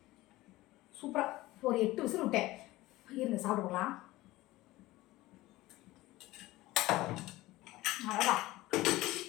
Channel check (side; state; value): right; quieter; 18.2 dB